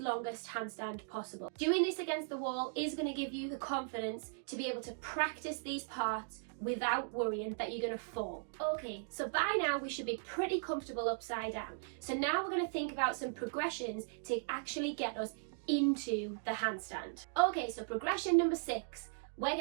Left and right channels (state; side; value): silent; left; digital silence